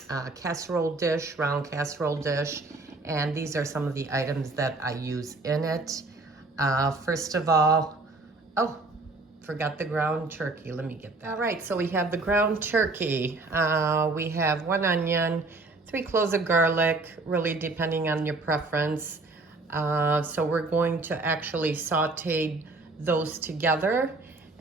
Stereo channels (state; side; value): quieter; left; 3.4 dB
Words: casserole dish, round casserole dish, and these are some of the items that I use in it. First of all, oh, forgot the ground turkey. Let me get that. All right, so we have the ground turkey. We have 1 onion, 3 cloves of garlic, really depending on your preference. So we're going to actually saute those together.